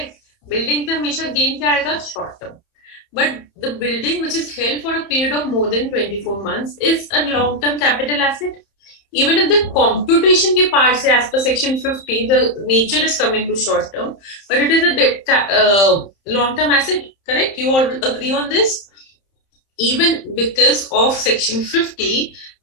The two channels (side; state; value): right; late; 31 ms